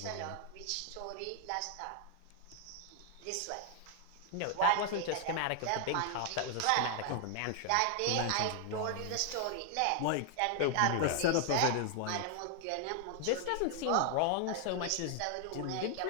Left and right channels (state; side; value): different; both; correlation 0.00